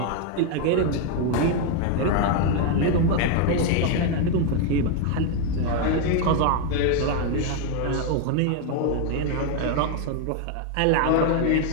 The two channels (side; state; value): both; different; correlation 0.01